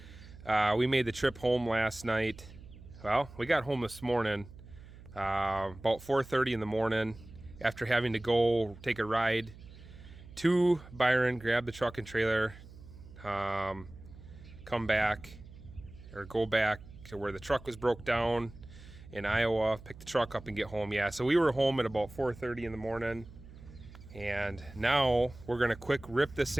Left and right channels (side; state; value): right; noise; hum, 18 dB below the sound